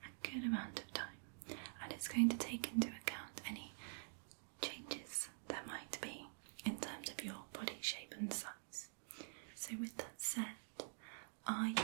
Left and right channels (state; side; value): silent; left; digital silence